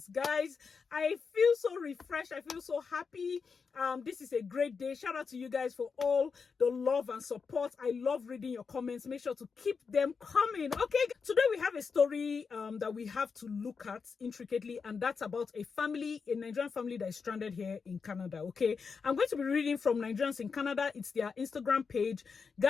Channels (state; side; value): quieter; right; 5.4 dB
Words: guys. I feel so refreshed. I feel so happy. This is a great day. Shout out to you guys for all the love and support. I love reading your comments. Make sure to keep them coming. Okay, today we have a story that we have to look at intricately, and that's about a family, a Nigerian family that is stranded here in Canada. Okay, I'm going to be reading from Nigerians in Canada. It's their Instagram page.